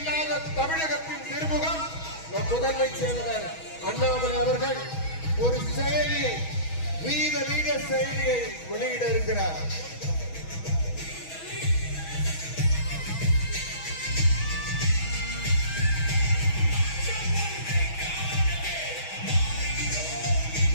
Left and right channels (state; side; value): late; right; 6.2 ms